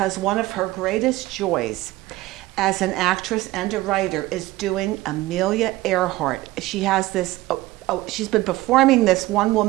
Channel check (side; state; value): left; quieter; 18.1 dB